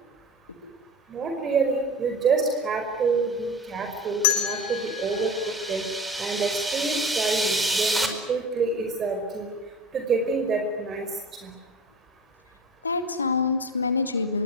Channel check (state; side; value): normal; both; correlation 0.32